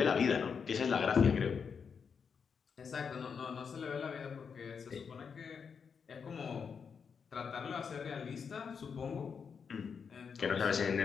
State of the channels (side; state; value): right; quieter; 6.3 dB